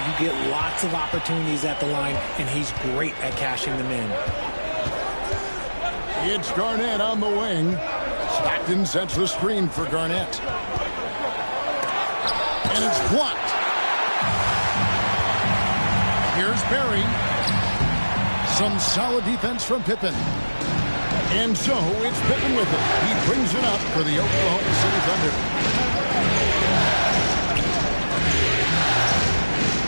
get lots of opportunities at the line, and he's great at cashing them in. It's Garnett on the wing. Stockton sets the screen for Garnett. And it's blocked. Here's Barry. Some solid defense from Pippen. And so it's Pippen with it. He brings it up for the Oklahoma City Thunder.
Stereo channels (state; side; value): inverted; both; correlation -1.00